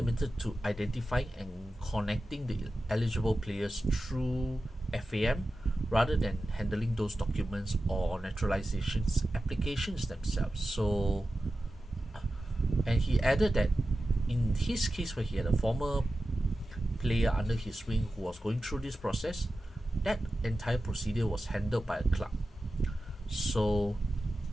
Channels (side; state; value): both; normal; correlation 0.93